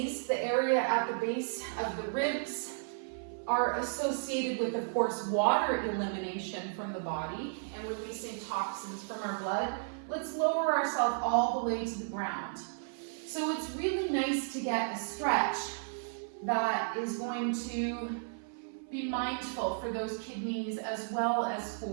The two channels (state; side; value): silent; left; 55 dB below the other